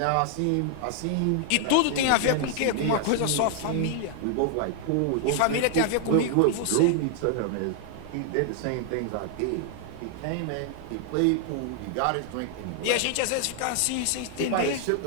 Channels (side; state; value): both; different; correlation 0.00